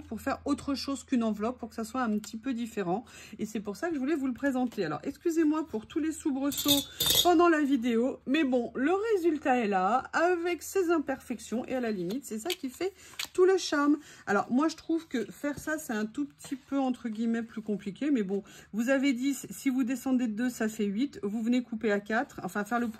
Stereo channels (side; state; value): both; identical; correlation 1.00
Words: pour faire autre chose qu'une enveloppe, pour que ça soit un petit peu différent. Et c'est pour ça que je voulais vous le présenter. Alors, excusez-moi pour tous les soubresauts pendant la vidéo. Mais bon, le résultat est là, avec ses imperfections. Et à la limite, c'est ça qui fait tout le charme. Alors, moi, je trouve que faire ça, c'est un tout petit peu, entre guillemets, plus compliqué. Mais bon, vous avez 10, si vous descendez de 2, ça fait 8. Vous venez couper à 4, enfin faire le